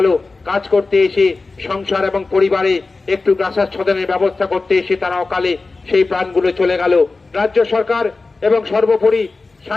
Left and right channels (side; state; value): right; quieter; 3.7 dB